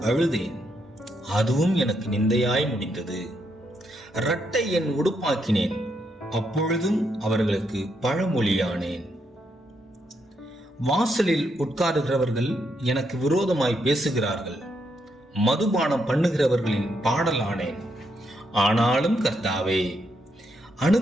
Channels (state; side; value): normal; both; correlation 0.78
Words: அழுதேன். அதுவும் எனக்கு நிந்தையாய் முடிந்தது. இரட்டை என் உடுப்பாக்கினேன். அப்பொழுதும் அவர்களுக்கு பழமொழியானேன். வாசலில் உட்காருகிறவர்கள் எனக்கு விரோதமாய் பேசுகிறார்கள். மதுபானம் பண்ணுகிறவர்களின் பாடலானேன். ஆனாலும் கர்த்தாவே,